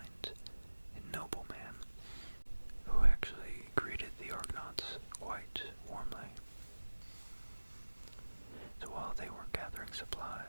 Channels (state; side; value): inverted; both; correlation -1.00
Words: and noble man, who actually greeted the Argonauts quite warmly. So while they were gathering